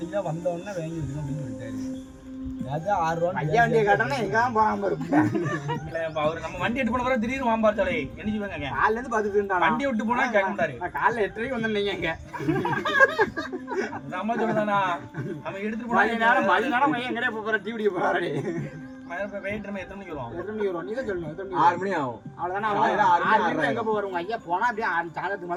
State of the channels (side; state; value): both; identical; correlation 1.00